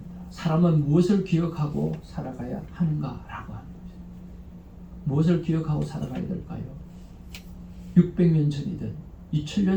사람은 무엇을 기억하고 살아가야 하는가라고 하는 거죠. 무엇을 기억하고 살아가야 될까요? 600년 전이든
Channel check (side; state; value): both; identical; correlation 1.00